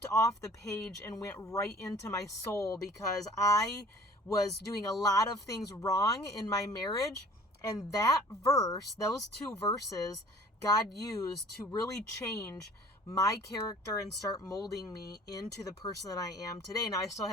off the page and went right into my soul, because I was doing a lot of things wrong in my marriage. And that verse, those two verses, God used to really change my character and start molding me into the person that I am today. Now, I still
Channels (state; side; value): normal; both; correlation 0.50